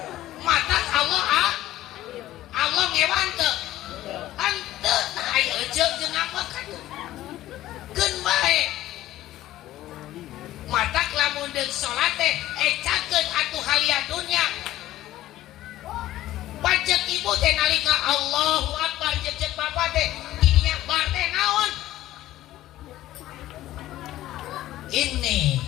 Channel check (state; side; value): quieter; right; 14.7 dB